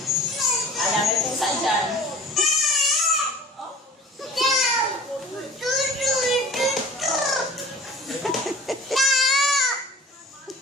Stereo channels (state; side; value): normal; both; correlation 0.44